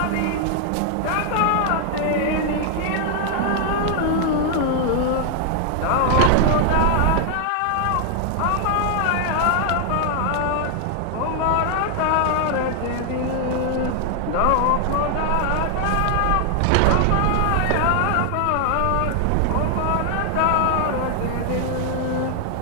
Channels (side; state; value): both; different; correlation 0.00